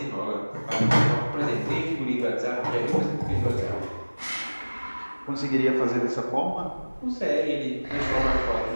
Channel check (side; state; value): both; inverted; correlation -1.00